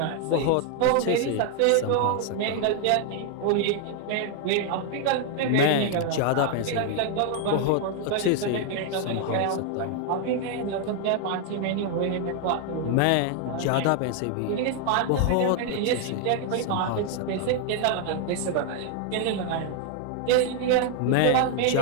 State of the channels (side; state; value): both; different; correlation 0.00